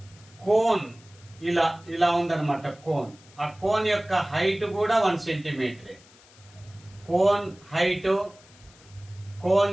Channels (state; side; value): noise; left; hiss, 26 dB below the sound